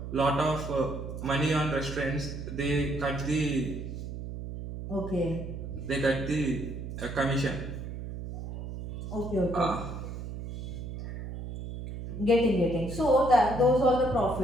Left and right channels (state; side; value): noise; right; hum, 8 dB below the sound